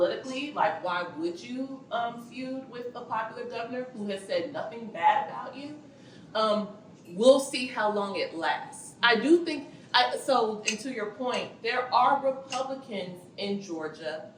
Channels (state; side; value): identical; both; correlation 1.00